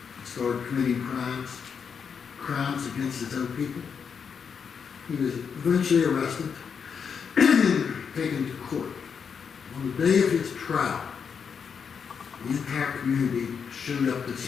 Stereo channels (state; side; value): quieter; right; 6.5 dB